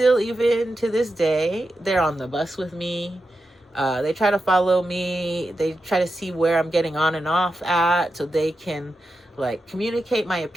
even to this day, they're on the bus with me. They try to follow me. They try to see where I'm getting on and off at so they can like communicate my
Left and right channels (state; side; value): normal; both; correlation 0.89